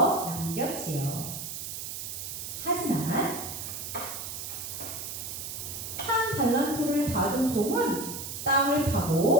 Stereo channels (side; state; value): right; noise; hiss, 7 dB below the sound